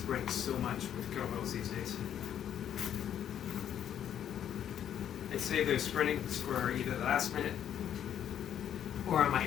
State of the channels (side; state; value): right; quieter; 9.8 dB